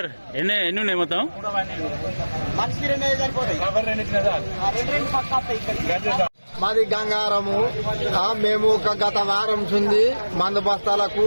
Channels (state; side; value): inverted; both; correlation -1.00